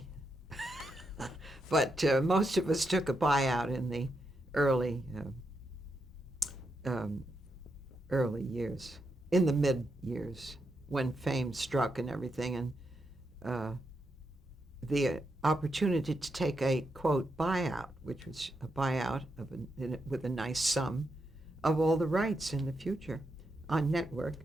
but most of us took a buyout in the early um, early years, in the mid years, when fame struck and everything, and uh, the opportunity to take a quote buyout, which was a buyout with a nice sum of all the rights in the future on network.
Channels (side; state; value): both; normal; correlation 0.83